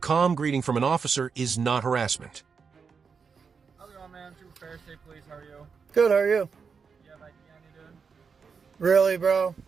greeting from an officer is not harassment. How's it going, man? Trooper Fair State Police, how are you? Good, how are you? You have ID on you, dude? Really, bro?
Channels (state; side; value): quieter; left; 5.7 dB